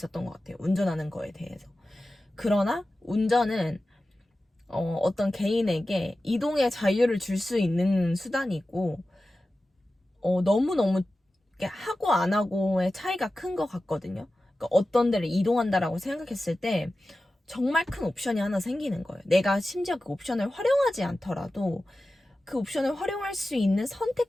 것 같아요. 운전하는 거에 대해서. 그러나 운전은 어떤 개인에게 이동의 자유를 줄 수 있는 수단이고 너무너무 하고 안 하고의 차이가 큰 것 같거든요. 그러니까 어떤 데를 이동한다라고 생각했을 때 정말 큰 옵션이 하나 생기는 거예요. 내가 심지어 그 옵션을 활용하지 않더라도 그 옵션을 활용할 수 있는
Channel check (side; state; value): both; normal; correlation 0.94